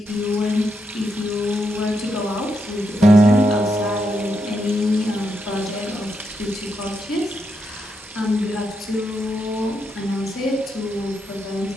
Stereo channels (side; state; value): both; normal; correlation 0.82